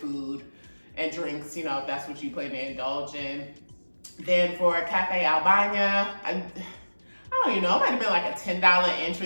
and drinks, if that's what you plan to indulge in. Then for Cafe Albania, I don't even know, it might have been like a $10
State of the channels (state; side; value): inverted; both; correlation -1.00